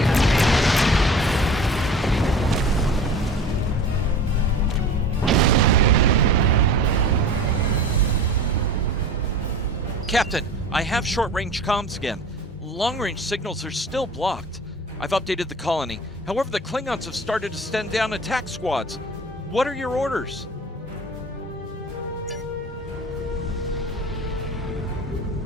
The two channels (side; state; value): both; normal; correlation 0.40